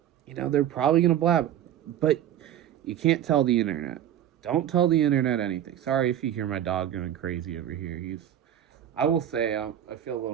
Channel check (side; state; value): left; quieter; 10.9 dB